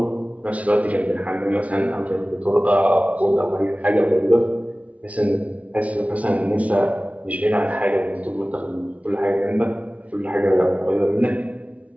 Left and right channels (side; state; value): left; late; 0.066 ms